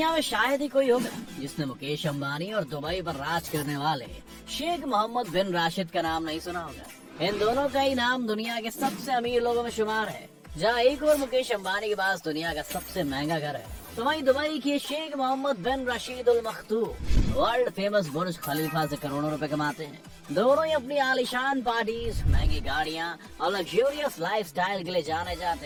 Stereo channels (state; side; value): identical; both; correlation 1.00